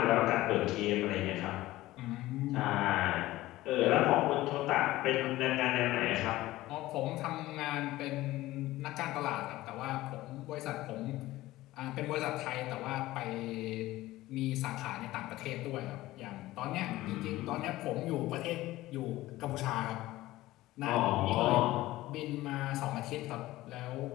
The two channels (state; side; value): quieter; right; 17.0 dB